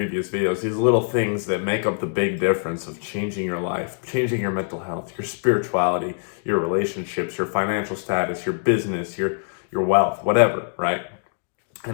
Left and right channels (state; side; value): silent; right; digital silence